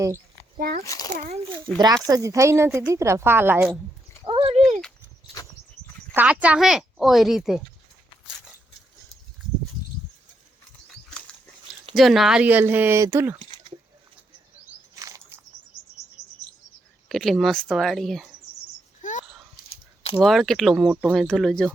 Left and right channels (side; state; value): both; normal; correlation 0.79